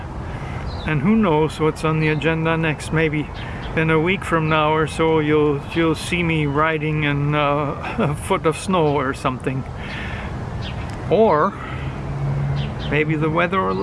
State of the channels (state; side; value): identical; both; correlation 1.00